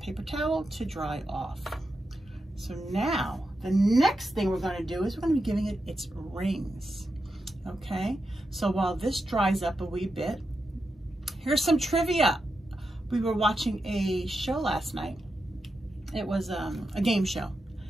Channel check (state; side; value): normal; both; correlation 0.88